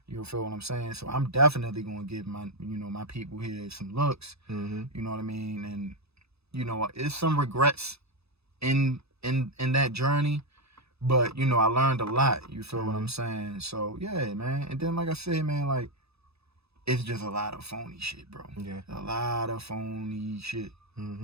You feel what I'm saying? So I'm definitely gonna give my people here some looks. You know what I mean? And you know, it's some regrets in that journey, but you know, I learned a lot. You feel what I'm saying? So yeah, man. And then like I said, man, like it's just a lot of phony shit, bro. Yeah, a lot of phony shit.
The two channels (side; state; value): left; late; 0.79 ms